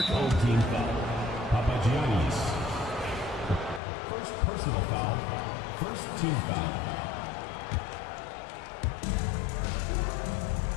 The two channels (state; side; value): drops out; right; at 3.8 s